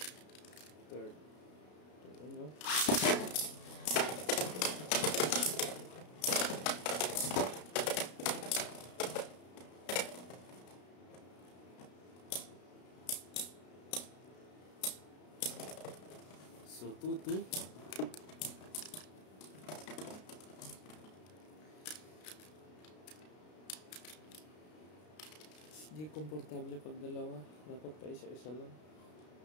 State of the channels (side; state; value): right; late; 33 ms